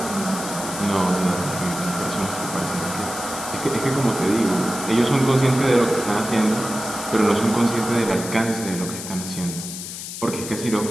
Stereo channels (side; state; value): left; noise; hiss, 8 dB below the sound